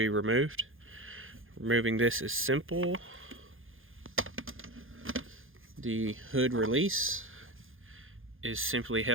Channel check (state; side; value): late; left; 0.59 ms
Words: removed. Removing this is simple. The hood release is simply